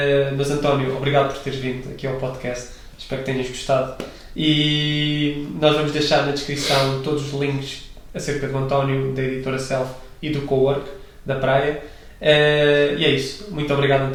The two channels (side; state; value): both; identical; correlation 1.00